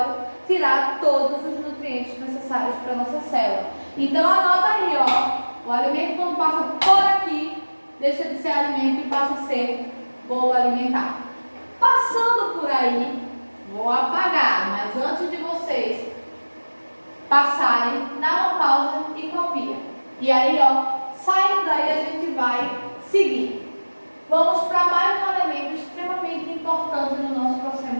tirar todos os nutrientes necessários para a nossa célula. Então anota aí, ó, o alimento quando passa por aqui, deixa de ser alimento e passa a ser bolo alimentar. Passando por aí, vou apagar, mas antes de vocês passarem, dá uma pausa e copia. E aí, ó, saindo daí a gente vai seguir. Vamos para mais um elemento extremamente importante no nosso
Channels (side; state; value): both; inverted; correlation -1.00